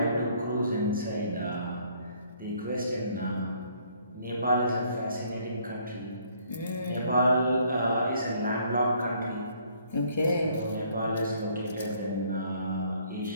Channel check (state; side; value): inverted; both; correlation -0.63